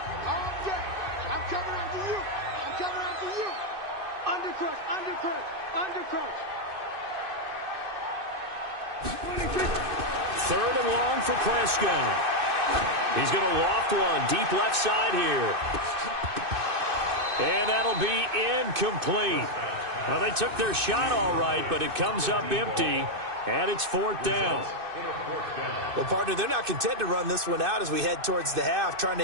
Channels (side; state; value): left; late; 2.6 ms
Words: Third and long for Prescott. He's going to loft one deep left side here. And that'll be incomplete. Now, they took their shot all right, but it comes up empty, and it's 4th down. Well, partner, they're not content to run this one out as we head towards the half, trying to